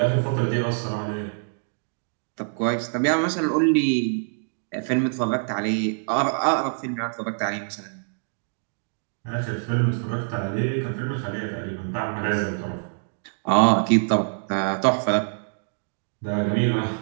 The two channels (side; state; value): left; silent; digital silence